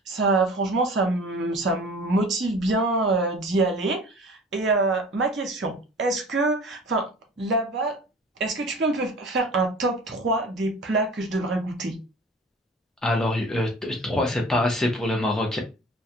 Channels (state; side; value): normal; both; correlation 0.43